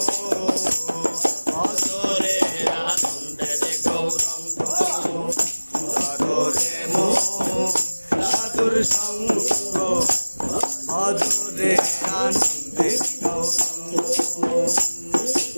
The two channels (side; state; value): both; inverted; correlation -1.00